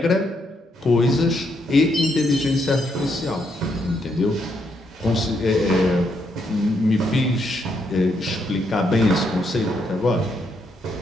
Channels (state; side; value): normal; both; correlation 0.77